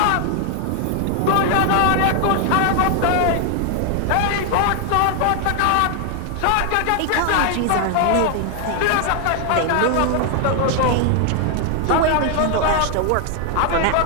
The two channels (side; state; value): both; different; correlation 0.00